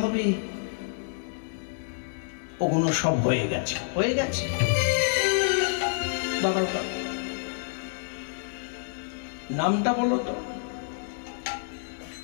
হবে, ওগুলো সব হয়ে গেছে, হয়ে গেছে। দাদা নামটা বলো তো।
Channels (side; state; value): right; silent; digital silence